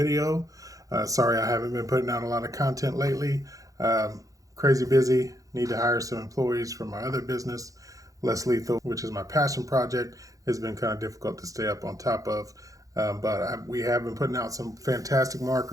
Sorry I haven't been putting out a lot of content lately. Crazy busy. Need to hire some employees for my other business, Less Lethal, which is my passion project. It's been kind of difficult to stay up on top of. We have been putting out some fantastic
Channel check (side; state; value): left; late; 0.17 ms